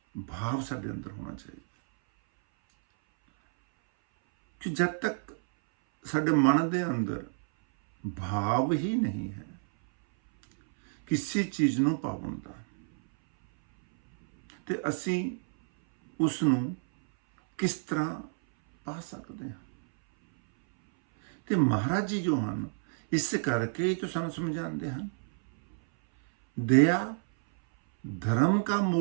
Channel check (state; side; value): silent; left; 58 dB below the other